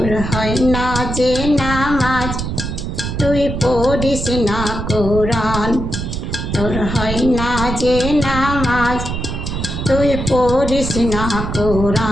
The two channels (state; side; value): noise; right; rumble, 4 dB below the sound